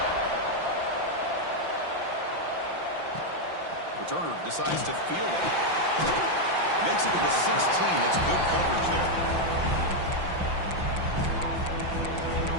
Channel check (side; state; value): left; late; 5.8 ms